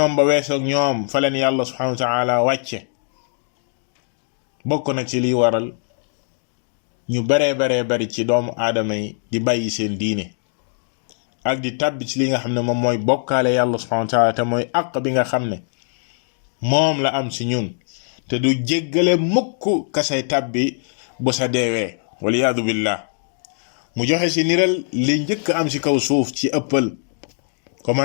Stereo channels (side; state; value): right; silent; digital silence